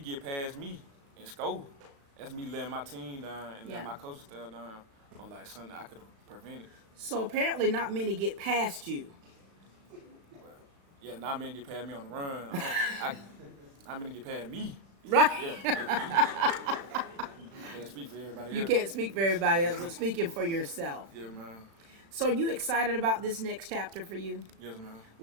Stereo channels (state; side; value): late; left; 36 ms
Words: past me and score, that's me letting my team down and Yeah. letting my coaching staff down on like something I could have prevented. So apparently not many get past you. Yeah, not many get past me on the run. Not many get past me. Right. Yeah. Can't speak for everybody else. You can't speak for everybody else, but speaking for yourself. Yeah, man. So are you excited about this next chapter for you? Yes, man.